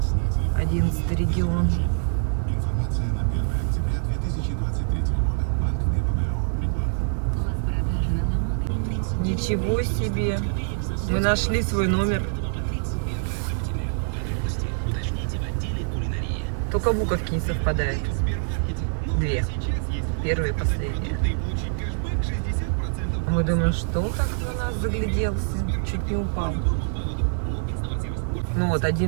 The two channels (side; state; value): left; silent; digital silence